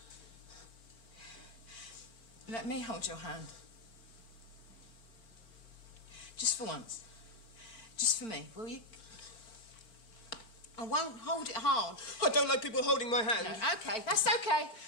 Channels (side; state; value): right; late; 4.4 ms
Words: let me hold your hand. Just for once. Just for me, will you? I won't hold it hard. I don't like people holding my hand. No, okay, that's okay.